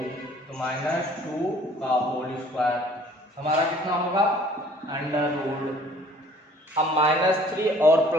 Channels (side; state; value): both; normal; correlation 0.55